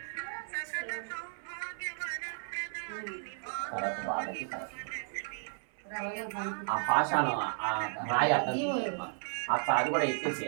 తర్వాత బాధకి ఆ పాషాణం ఆ రాయి అర్థం అక్కడ అది కూడా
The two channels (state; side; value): silent; left; 55 dB below the other